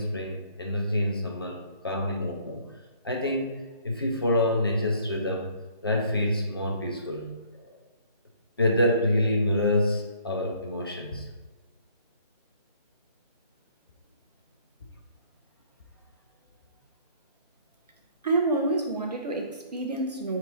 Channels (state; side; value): inverted; both; correlation -0.60